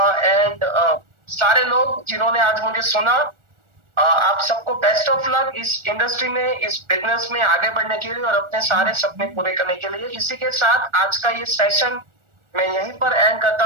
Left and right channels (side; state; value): left; late; 1.4 ms